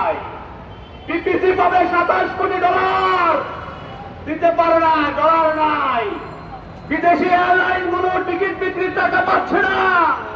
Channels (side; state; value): both; identical; correlation 1.00